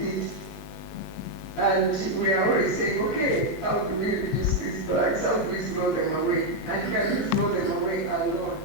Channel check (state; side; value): normal; both; correlation 0.01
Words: And we are always saying, okay, how do we reduce these bags? How do we throw them away? And can you throw them away alone?